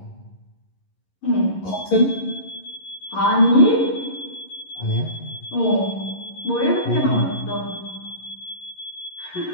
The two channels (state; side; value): late; right; 11 ms